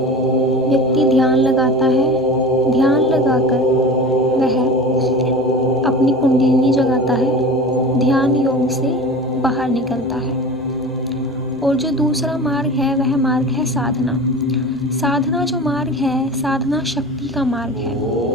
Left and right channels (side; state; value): both; normal; correlation 0.35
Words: व्यक्ति ध्यान लगाता है। ध्यान लगाकर वह अपनी कुंडलिनी जगाता है, ध्यान योग से बाहर निकलता है। और जो दूसरा मार्ग है वह मार्ग है साधना। साधना जो मार्ग है, साधना शक्ति का मार्ग है।